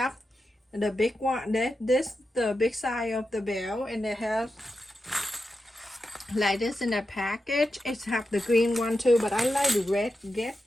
the big one, the big size of the bell, and they have like this in a package. It's have the green one too, but I like the red.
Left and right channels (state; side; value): normal; both; correlation 0.90